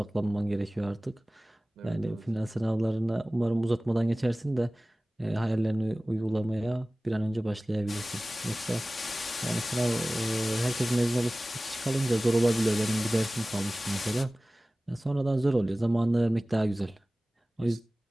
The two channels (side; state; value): both; normal; correlation 0.98